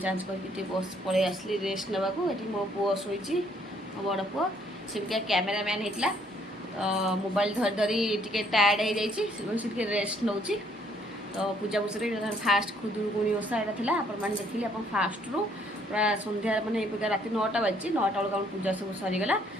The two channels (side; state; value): both; normal; correlation 0.65